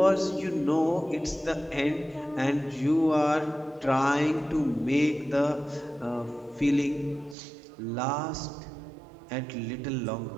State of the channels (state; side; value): drops out; left; at 7.4 s